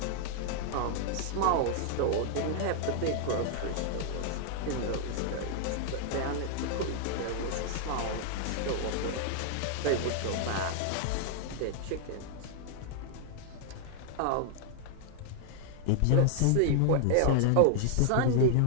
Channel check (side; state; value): both; different; correlation 0.00